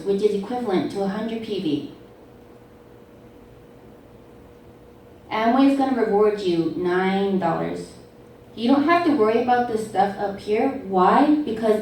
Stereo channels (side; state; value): both; identical; correlation 1.00